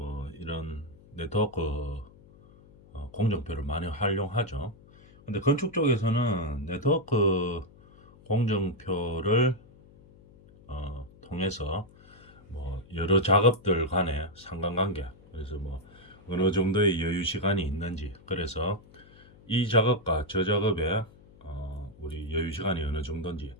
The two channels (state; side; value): noise; left; hum, 24 dB below the sound